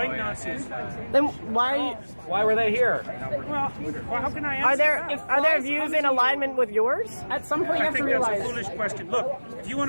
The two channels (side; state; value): both; inverted; correlation -1.00